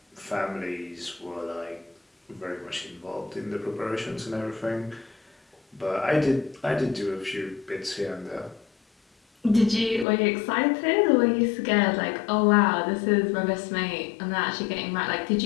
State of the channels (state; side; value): drops out; right; at 10.1 s